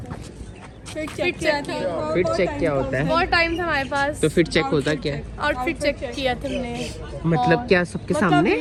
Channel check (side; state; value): both; identical; correlation 1.00